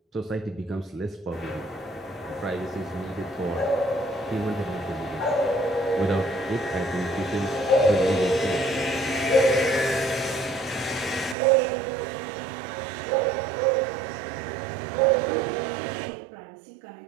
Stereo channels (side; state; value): left; drops out; at 11.4 s